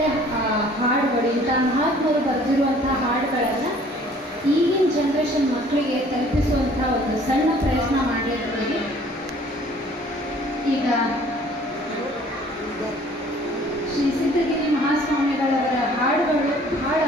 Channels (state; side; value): normal; both; correlation 0.54